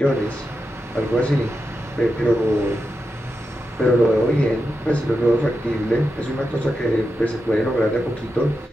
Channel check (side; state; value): both; normal; correlation 0.88